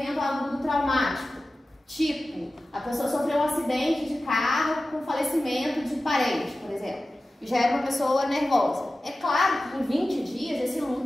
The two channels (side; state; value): both; normal; correlation 0.95